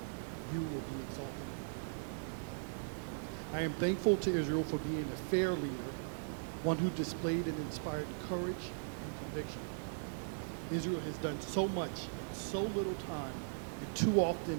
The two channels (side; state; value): left; silent; digital silence